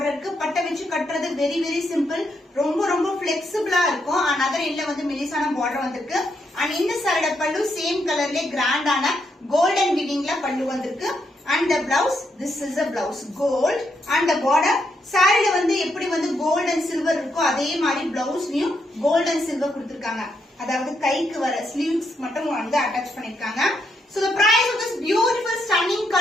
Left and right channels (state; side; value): normal; both; correlation 0.78